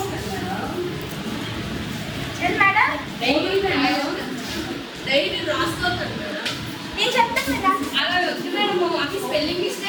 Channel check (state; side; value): identical; both; correlation 1.00